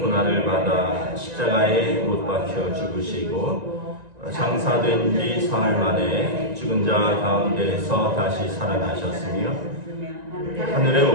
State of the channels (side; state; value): left; late; 1.9 ms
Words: 고난을 받아 십자가에 못 박혀 죽으시고 장사된 지 사흘 만에 죽은 자 가운데서 다시 살아나셨으며 하늘에